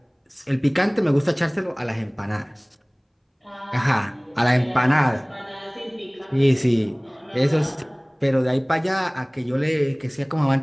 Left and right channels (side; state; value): both; identical; correlation 1.00